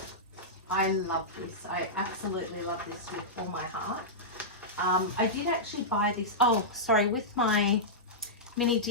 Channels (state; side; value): normal; both; correlation -0.13